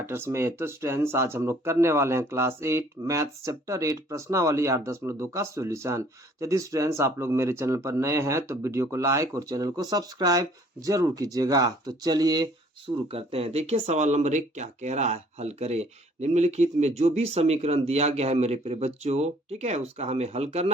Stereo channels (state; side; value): normal; both; correlation 0.57